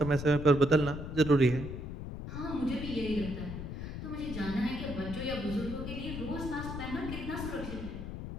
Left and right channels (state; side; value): noise; left; rumble, 7 dB below the sound